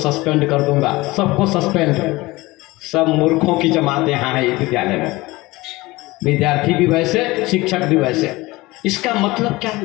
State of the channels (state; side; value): quieter; right; 20.8 dB